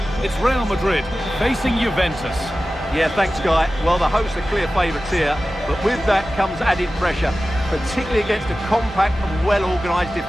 It's Real Madrid facing Juventus. Yeah, thanks, Guy. Well, the hosts are clear favourites here, but with that comes added pressure, particularly against a compact and well-organised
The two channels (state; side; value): normal; both; correlation 0.95